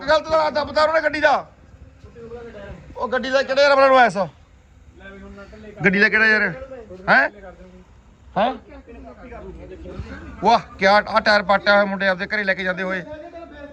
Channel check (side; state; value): both; identical; correlation 1.00